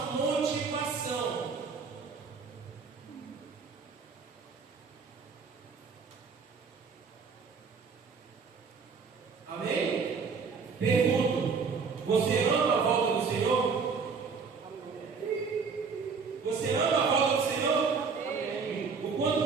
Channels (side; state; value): left; quieter; 5.3 dB